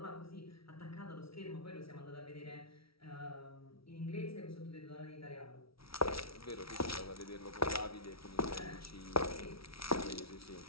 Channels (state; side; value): late; right; 0.75 ms